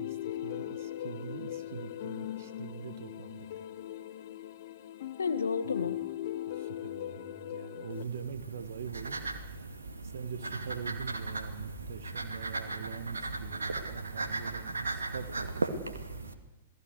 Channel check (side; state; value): both; inverted; correlation -0.65